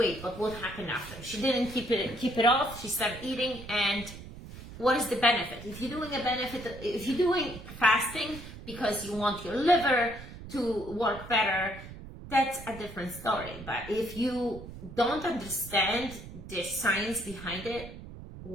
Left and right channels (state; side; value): noise; right; rumble, 13 dB below the sound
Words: but what happened after? She didn't keep it off. She started eating, and what is the benefit? If you're doing fasting because you want your liver to work better, that's a different story. But if you don't understand the science behind it,